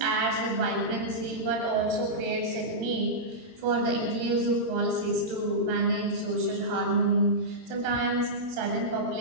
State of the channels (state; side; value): late; left; 18 ms